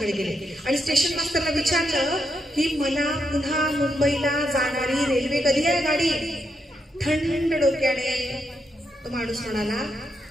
गेले आणि स्टेशन मास्टरला विचारलं की मला पुन्हा मुंबईला जाणारी रेल्वे कधी आहे गाडी? थंड डोक्याने तो माणूस म्हणाला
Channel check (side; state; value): both; normal; correlation 0.81